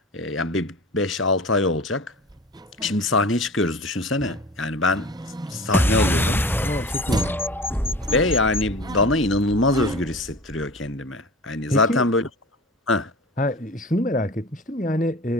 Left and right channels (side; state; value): both; normal; correlation 0.37